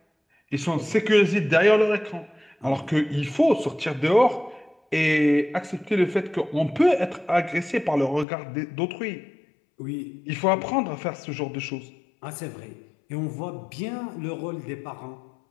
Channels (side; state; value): right; drops out; at 8.2 s